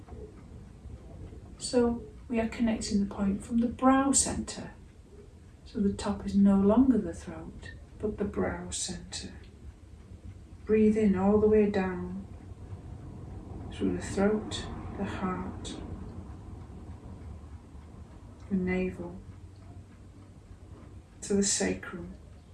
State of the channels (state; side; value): identical; both; correlation 1.00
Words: So we are connecting the point from the brow centre. So the top is no longer the throat, but the brow centre. Breathe in all the way down through the throat, the heart, the navel, to the sacrum,